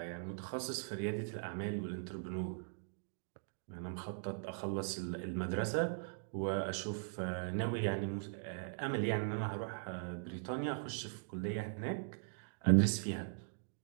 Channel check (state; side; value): silent; left; digital silence